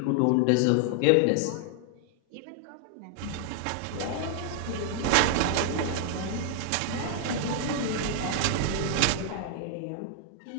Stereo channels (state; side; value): different; both; correlation 0.00